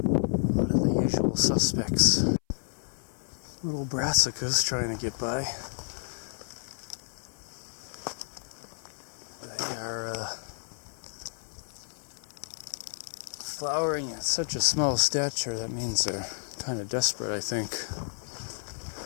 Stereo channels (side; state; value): right; silent; 56 dB below the other